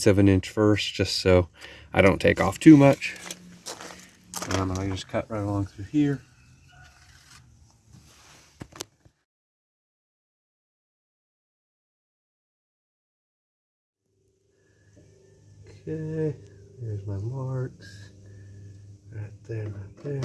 of an inch first, just so I don't take off too much. And I'm gonna just cut right along through here. Okay, there's my marks. Right there, right there.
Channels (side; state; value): both; identical; correlation 1.00